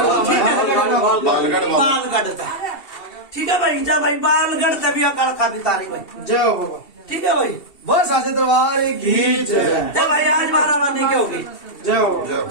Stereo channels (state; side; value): late; right; 2.7 ms